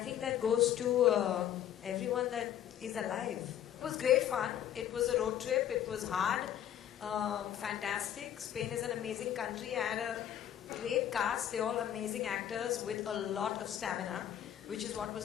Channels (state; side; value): quieter; right; 10.7 dB